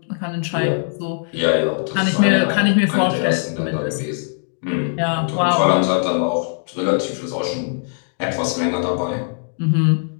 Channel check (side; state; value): right; silent; digital silence